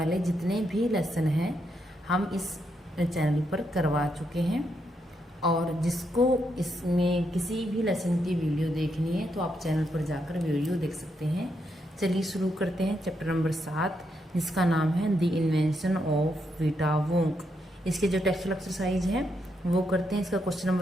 जितने भी लेसन हैं हम इस चैनल पर करवा चुके हैं, और जिसको इसमें किसी भी लेसन की वीडियो देखनी है तो आप चैनल पर जाकर वीडियो देख सकते हैं। चलिए शुरू करते हैं चैप्टर नंबर 7, जिसका नाम है द इन्वेंशन ऑफ विटा वोंक। इसके जो टेक्सचुअल एक्सरसाइज है वो करते हैं। इसका क्वेश्चन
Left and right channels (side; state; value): both; normal; correlation 0.80